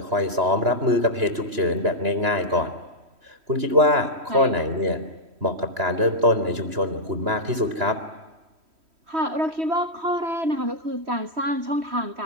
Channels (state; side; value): late; left; 3.1 ms